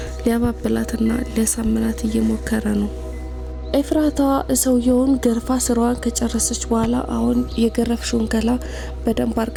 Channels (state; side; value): identical; both; correlation 1.00